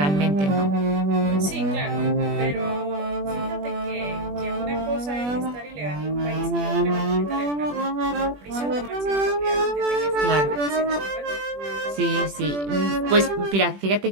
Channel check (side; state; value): left; late; 21 ms